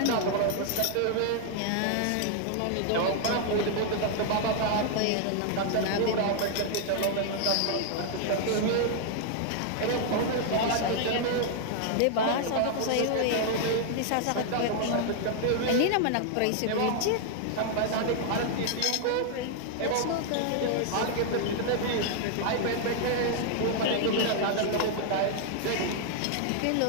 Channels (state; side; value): different; both; correlation 0.00